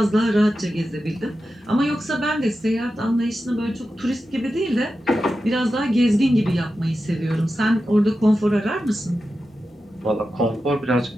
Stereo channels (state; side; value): normal; both; correlation 0.91